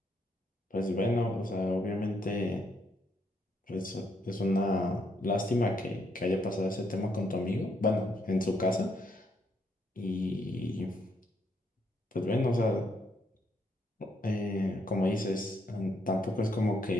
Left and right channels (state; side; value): normal; both; correlation 0.74